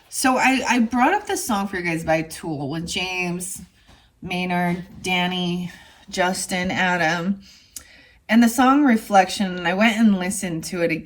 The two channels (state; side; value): identical; both; correlation 1.00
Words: So I brought up this song for you guys by Tool with James, Maynard, Danny, Justin, Adam. And the song Reflection, and I went and listened to it